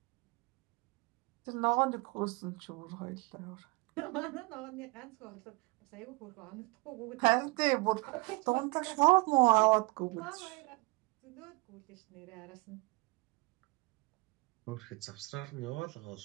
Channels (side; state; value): left; quieter; 26.1 dB